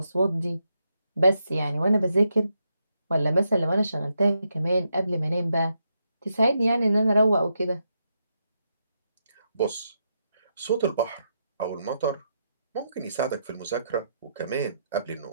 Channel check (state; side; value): inverted; both; correlation -0.81